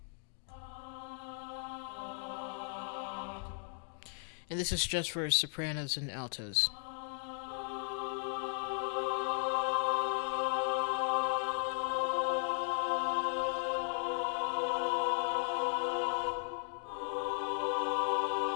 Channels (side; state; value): right; silent; digital silence